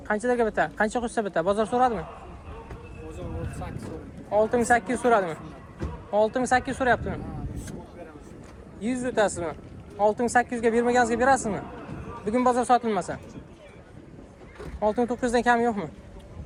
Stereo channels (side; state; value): both; identical; correlation 1.00